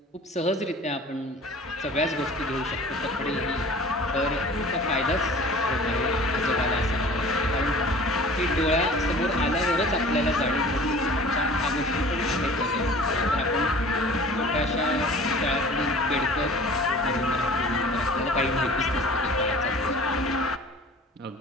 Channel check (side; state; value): both; normal; correlation 0.45